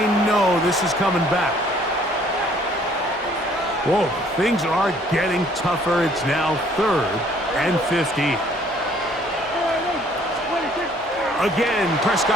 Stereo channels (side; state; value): both; normal; correlation 0.60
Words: know this is coming back. Whoa, things are getting tougher. It's now 3rd and 50. Again,